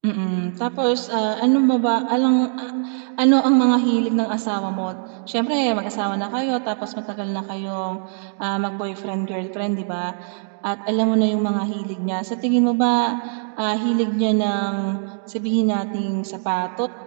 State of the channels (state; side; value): silent; left; digital silence